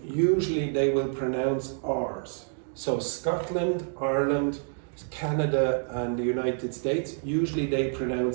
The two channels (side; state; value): left; silent; digital silence